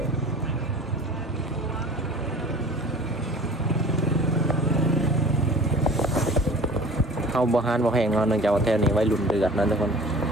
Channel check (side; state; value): both; normal; correlation 0.44